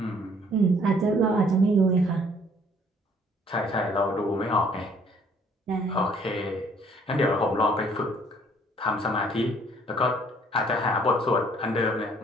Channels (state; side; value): normal; both; correlation 0.60